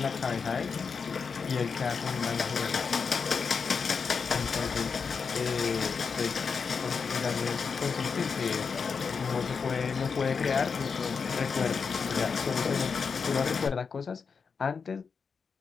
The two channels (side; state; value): right; quieter; 5.6 dB